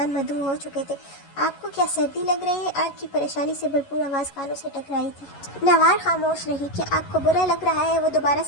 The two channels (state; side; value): late; right; 11 ms